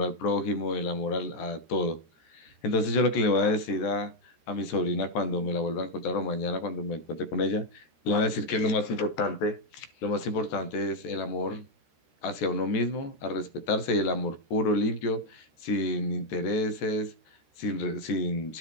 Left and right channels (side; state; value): right; late; 14 ms